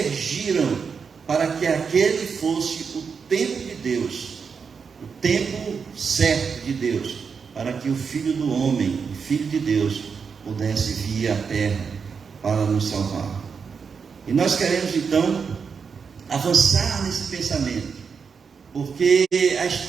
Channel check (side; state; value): left; quieter; 5.9 dB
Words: para que aquele fosse o tempo de Deus, o tempo certo de Deus, para que o Filho do homem, o Filho de Deus, pudesse vir à terra para nos salvar. E nós queremos então avançar nesse pensamento, porque a